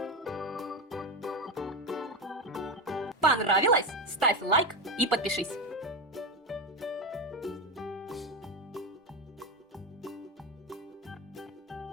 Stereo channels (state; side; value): normal; both; correlation 0.15